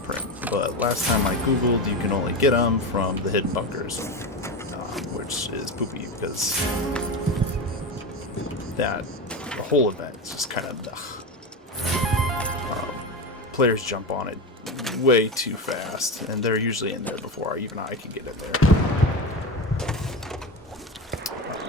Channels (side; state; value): both; normal; correlation 0.21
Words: But last time I googled, you can only get them from the hidden bunkers, which is poopy because the whole event is just kind of players jump on it way too fast, and they're usually in there before even I can get in there.